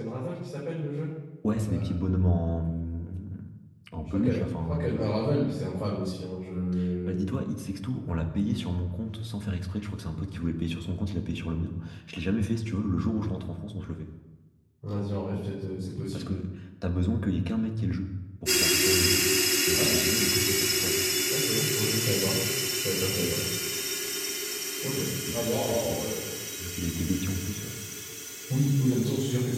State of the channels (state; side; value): identical; both; correlation 1.00